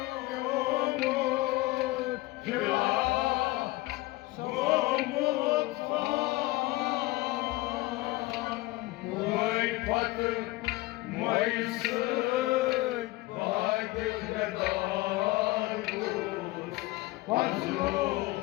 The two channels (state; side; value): quieter; right; 20.1 dB